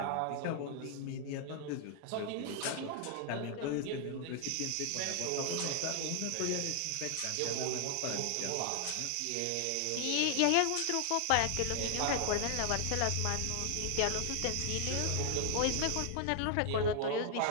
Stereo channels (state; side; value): different; both; correlation 0.00